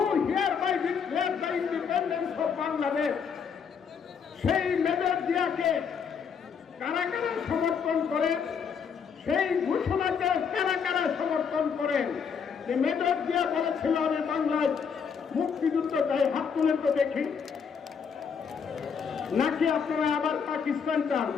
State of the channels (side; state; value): right; quieter; 6.6 dB